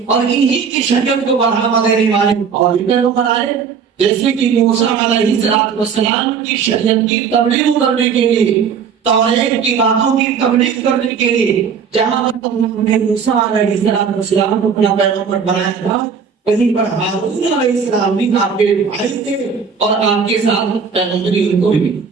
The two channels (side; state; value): left; quieter; 6.4 dB